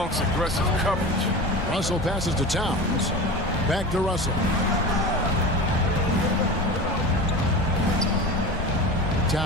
aggressive coverage. Russell passes to Towns. Back to Russell.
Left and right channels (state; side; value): normal; both; correlation 0.31